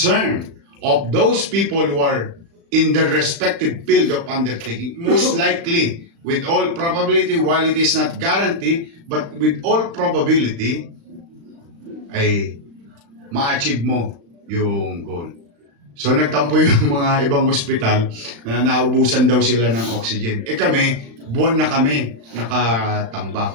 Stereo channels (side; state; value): left; late; 35 ms